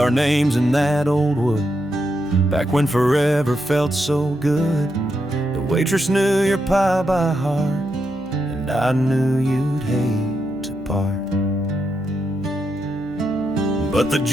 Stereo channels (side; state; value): left; noise; hum, 22 dB below the sound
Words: names in that old wood back when forever felt so good. The waitress knew your pie by heart, and I knew you'd hate to part. But the